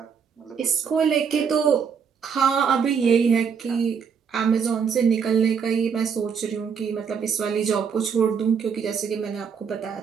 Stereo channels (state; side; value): quieter; left; 6.6 dB